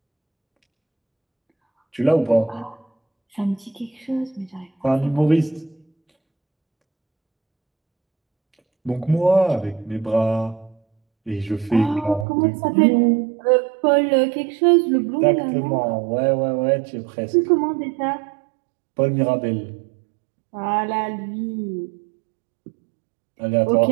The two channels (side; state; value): left; drops out; at 12.2 s